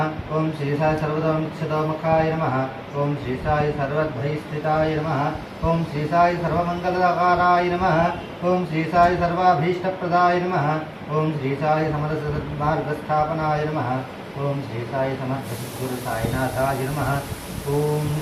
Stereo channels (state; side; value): identical; both; correlation 1.00